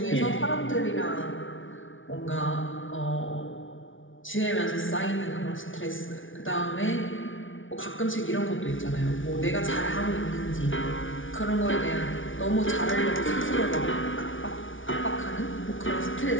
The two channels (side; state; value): right; late; 0.57 ms